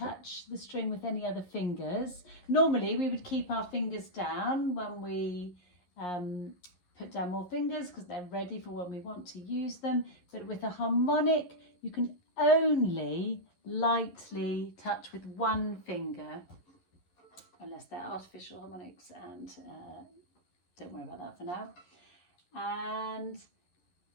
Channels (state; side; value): late; right; 11 ms